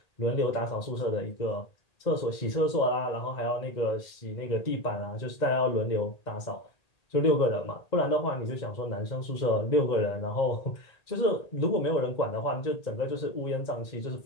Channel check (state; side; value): late; right; 2.0 ms